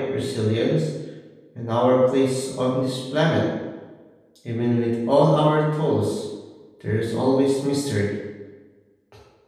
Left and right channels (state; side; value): identical; both; correlation 1.00